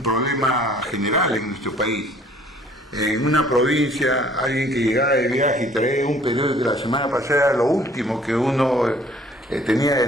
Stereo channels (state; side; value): normal; both; correlation 0.56